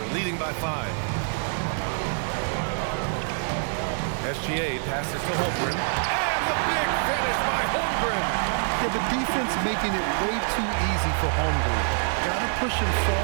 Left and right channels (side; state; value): left; silent; 61 dB below the other